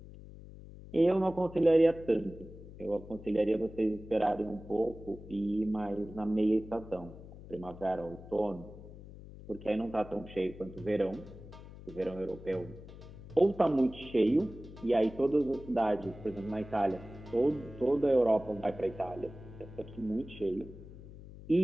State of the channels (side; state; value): left; noise; hum, 16 dB below the sound